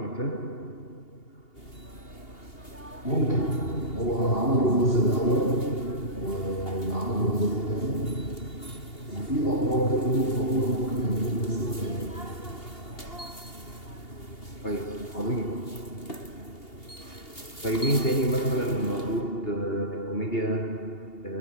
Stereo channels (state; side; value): late; right; 2.8 ms